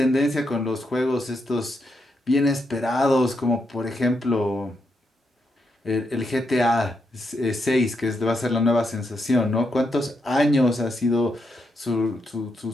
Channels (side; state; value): both; normal; correlation 0.81